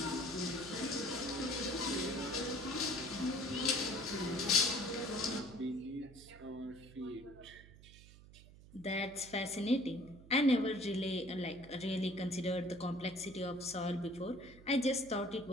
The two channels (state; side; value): noise; right; hum, 20 dB below the sound